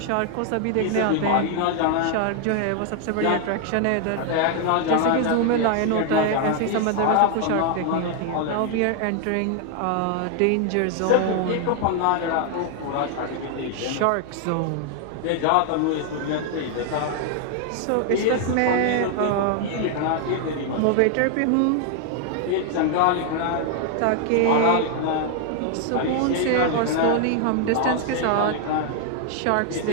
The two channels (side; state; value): both; different; correlation 0.00